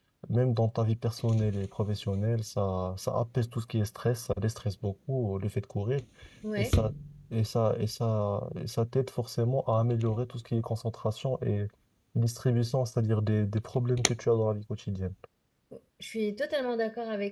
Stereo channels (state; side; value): identical; both; correlation 1.00